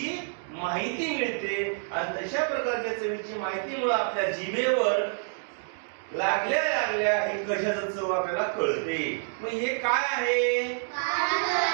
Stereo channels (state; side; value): silent; left; digital silence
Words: माहिती मिळते आणि तशा प्रकारच्या चवीची माहितीमुळे आपल्या जिभेवर लागल्या लागल्या हे कशाचं चव आपल्याला कळते. मग हे काय आहे?